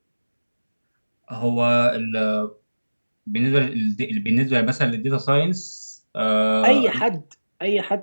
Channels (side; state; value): both; inverted; correlation -1.00